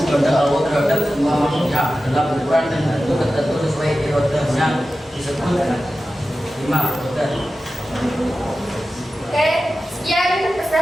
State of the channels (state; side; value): normal; both; correlation 0.94